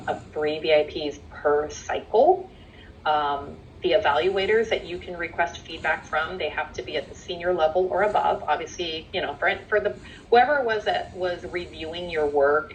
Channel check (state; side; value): identical; both; correlation 1.00